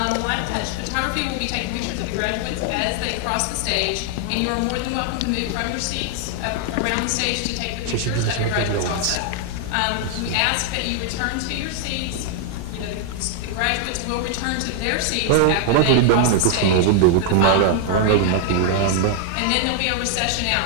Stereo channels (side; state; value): both; different; correlation 0.00